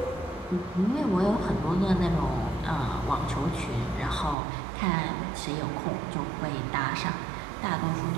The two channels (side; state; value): left; drops out; at 4.4 s